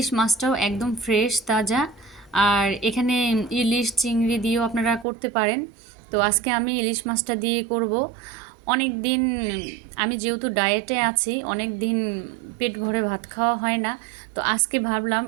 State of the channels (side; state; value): left; drops out; at 5.1 s